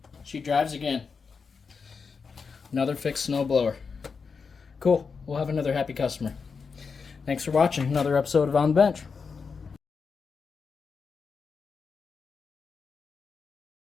She drives again. Another fixed snow blower. Cool. We'll have another happy customer. Thanks for watching another episode of On the Bench.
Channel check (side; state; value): right; quieter; 5.3 dB